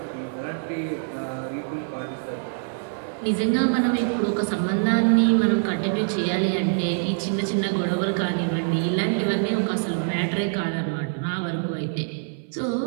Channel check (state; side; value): silent; left; 57 dB below the other